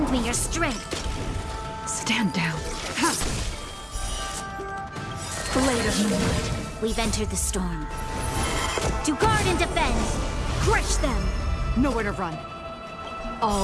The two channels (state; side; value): identical; both; correlation 1.00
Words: me your strength. Stand down. Blade of Moonlight. We've entered the storm. To guard and defend. Crush them. Nowhere to run.